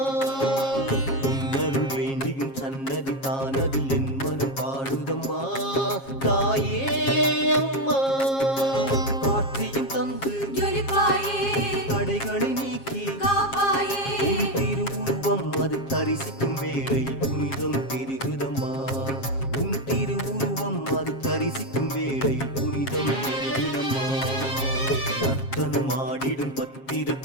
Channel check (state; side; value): late; right; 7.4 ms